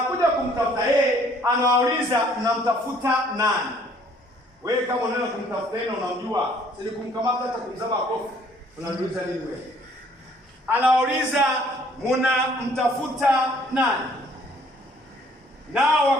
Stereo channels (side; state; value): both; normal; correlation 0.60